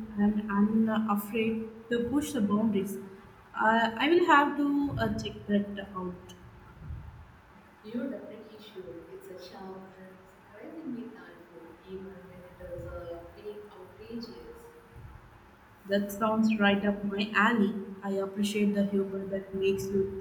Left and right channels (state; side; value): identical; both; correlation 1.00